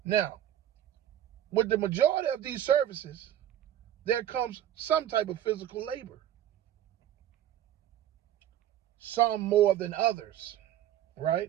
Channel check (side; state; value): left; quieter; 11.6 dB